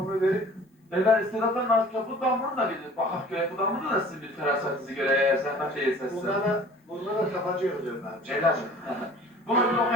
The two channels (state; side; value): normal; both; correlation 0.48